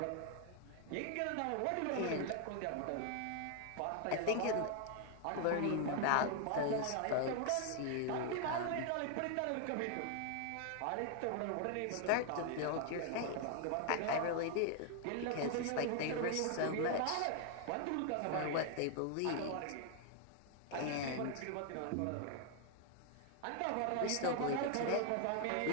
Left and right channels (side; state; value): both; different; correlation 0.00